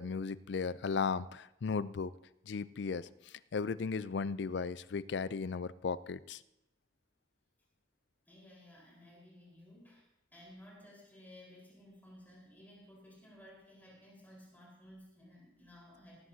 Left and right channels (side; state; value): right; quieter; 4.7 dB